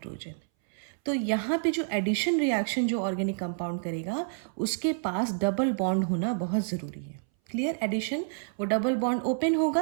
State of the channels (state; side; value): silent; left; 59 dB below the other